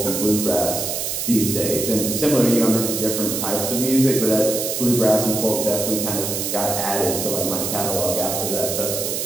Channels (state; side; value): noise; right; hiss, 2 dB below the sound